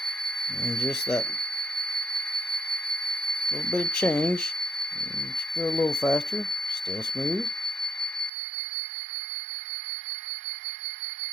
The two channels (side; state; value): left; drops out; at 8.3 s